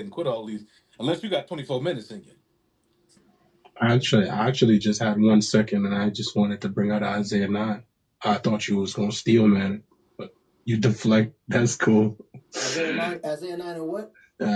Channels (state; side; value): identical; both; correlation 1.00